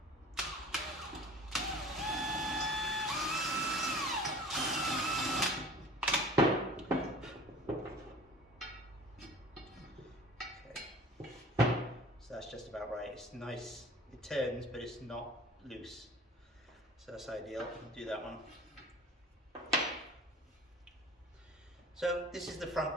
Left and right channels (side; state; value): both; normal; correlation 0.44